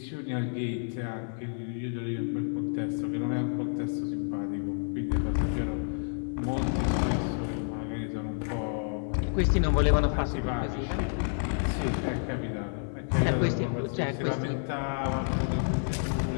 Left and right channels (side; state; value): right; silent; digital silence